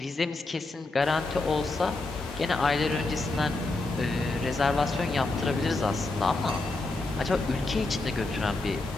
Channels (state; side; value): quieter; right; 3.2 dB